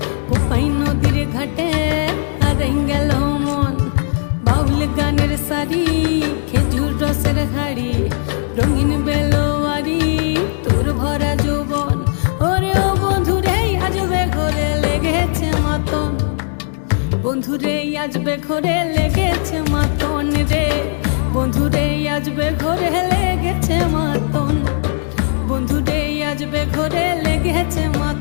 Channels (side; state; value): right; silent; digital silence